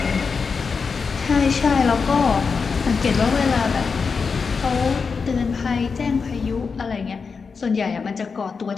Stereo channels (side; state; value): right; quieter; 5.2 dB